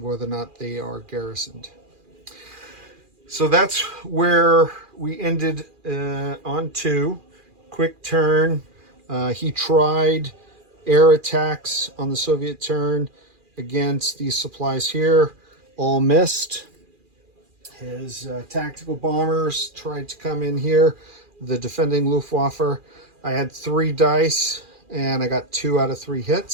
whether or not they are garrisoned. So that's where we ended on 2. Quick turn. He tried air attacks on the Soviet turn against these supplies here. All missed. His tactical bombers tried to come in here. The defending Luftwaffe. I had 3 dice and I got 2 out of 3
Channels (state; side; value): late; left; 2.4 ms